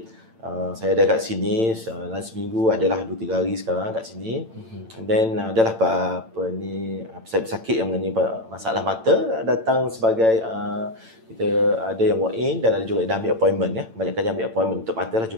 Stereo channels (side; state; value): left; late; 8.9 ms